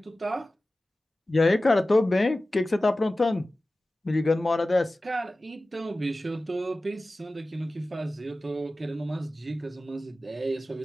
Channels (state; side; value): normal; both; correlation 0.96